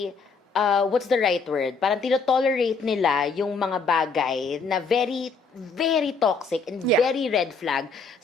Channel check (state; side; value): quieter; right; 4.5 dB